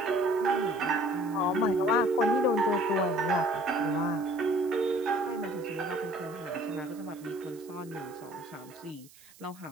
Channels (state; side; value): noise; right; hiss, 24 dB below the sound